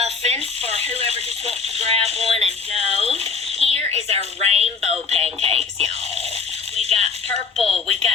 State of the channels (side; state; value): right; quieter; 5.2 dB